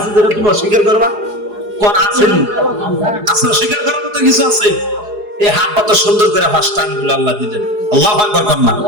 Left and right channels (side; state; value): left; late; 4.8 ms